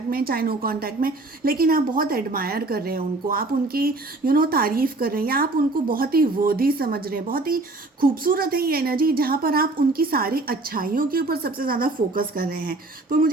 में चाहे नो कांटेक्ट में, लेकिन आप बहुत एडमायर कर रहे हैं उनको, आप उनकी तारीफ़ कर रहे हैं या आप उनको बहुत ही वर्दी समझ रहे हैं। बहुत ही खूबसूरत है ये एनर्जी जहाँ पर आप उनकी सारी अच्छाइयों के ऊपर सबसे ज़्यादा फोकस कर रहे हैं। तो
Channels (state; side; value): quieter; left; 3.0 dB